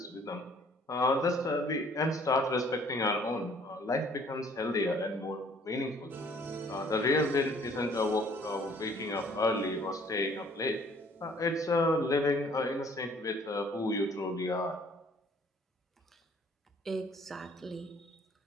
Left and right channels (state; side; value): normal; both; correlation 0.58